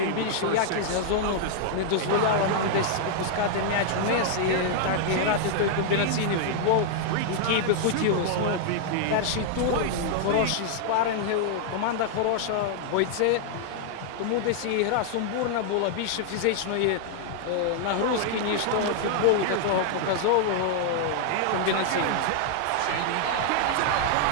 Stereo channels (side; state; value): both; different; correlation -0.01